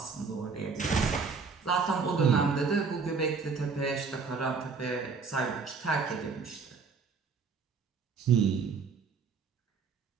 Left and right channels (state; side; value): quieter; left; 5.2 dB